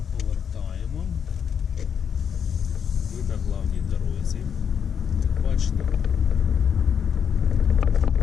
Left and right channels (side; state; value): right; quieter; 7.5 dB